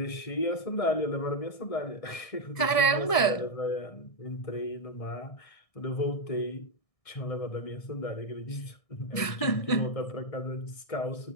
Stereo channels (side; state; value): right; late; 1.6 ms